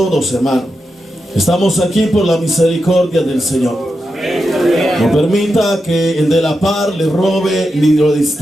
hermanos. Estamos aquí por la misericordia del Señor. No permita que el de la par le robe ni lo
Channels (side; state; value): both; normal; correlation 0.88